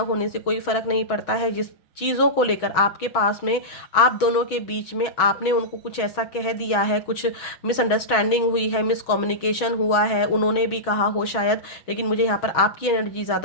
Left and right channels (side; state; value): right; late; 6.2 ms